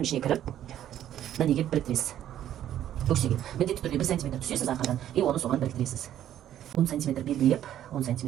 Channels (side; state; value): left; quieter; 11.4 dB